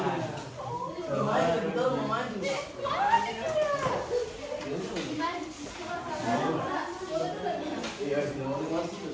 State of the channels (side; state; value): both; identical; correlation 1.00